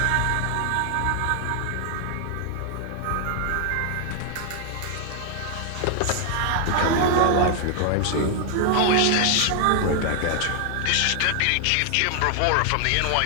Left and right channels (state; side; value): different; both; correlation 0.00